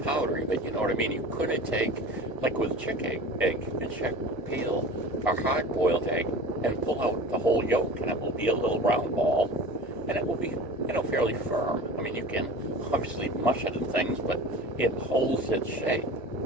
powdery, but you know what I mean? You couldn't take, like with a chicken egg, you can peel a hard-boiled egg and pull out the whole yolk, and it will be a little round ball, and it will be, fairly firm. I mean, you can obviously mush it and things, but it holds its shape.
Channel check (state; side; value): normal; both; correlation 0.37